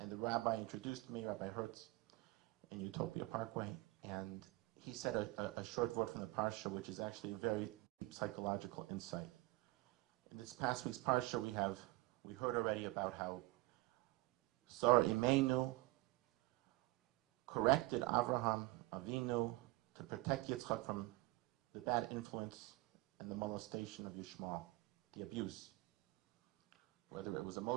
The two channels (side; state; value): left; quieter; 21.3 dB